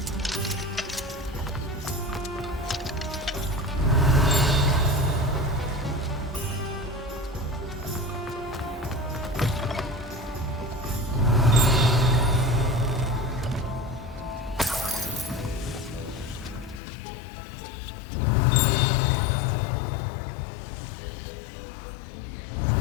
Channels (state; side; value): drops out; right; at 16.8 s